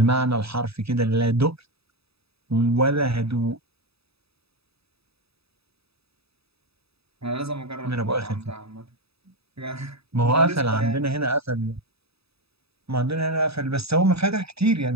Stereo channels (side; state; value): left; late; 0.78 ms